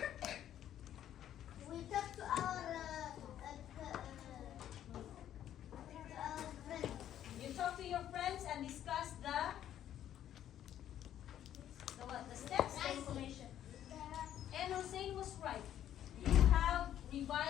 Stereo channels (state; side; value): quieter; right; 11.1 dB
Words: We talk to our friends. You talk to your friends and discuss the what? The steps, the information. And Hussein was right. You have